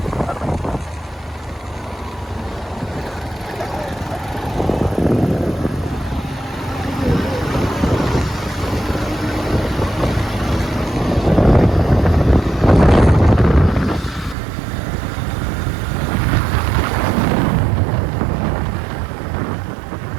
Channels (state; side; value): drops out; left; at 14.4 s